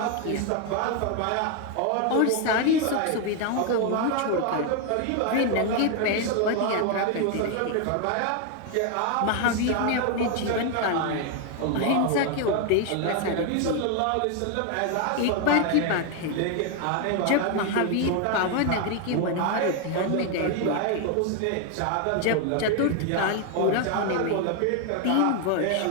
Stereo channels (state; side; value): different; both; correlation 0.01